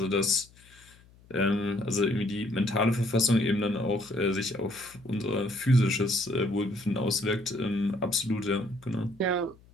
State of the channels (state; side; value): noise; left; hum, 27 dB below the sound